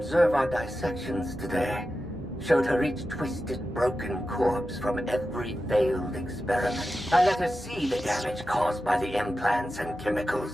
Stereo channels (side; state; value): both; normal; correlation 0.92